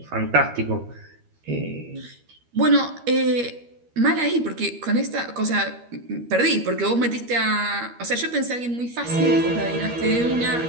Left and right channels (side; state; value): left; late; 13 ms